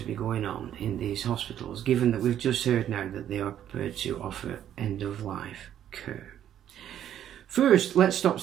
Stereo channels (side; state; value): left; quieter; 10.6 dB